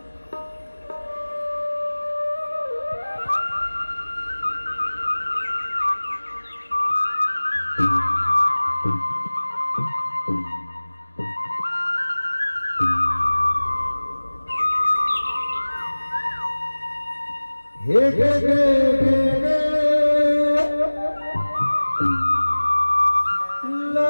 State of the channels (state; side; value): inverted; both; correlation -1.00